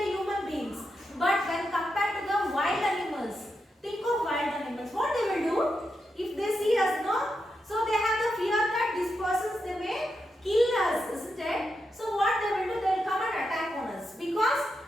human beings. But when compared to the wild animals, think of wild animals. What they will do if they see us, no? So they have the fear that these persons they may kill us, isn't it? So what they will do, they will come and attack on us because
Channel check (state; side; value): normal; both; correlation 0.86